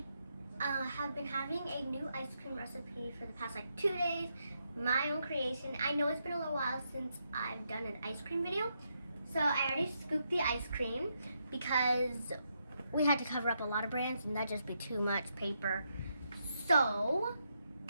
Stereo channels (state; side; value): inverted; both; correlation -0.80